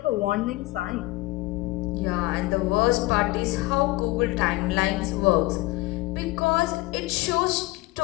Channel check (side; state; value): right; quieter; 20.2 dB